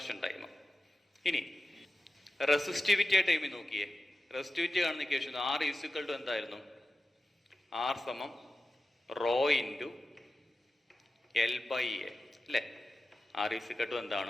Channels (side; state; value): both; normal; correlation 0.93